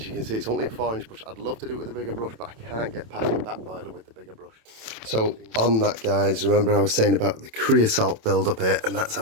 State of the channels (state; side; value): late; left; 27 ms